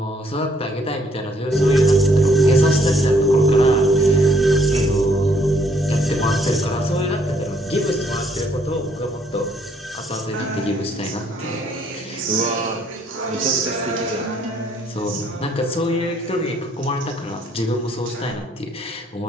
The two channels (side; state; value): both; normal; correlation 0.66